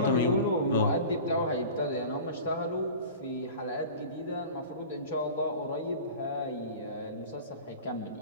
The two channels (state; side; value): inverted; both; correlation -0.38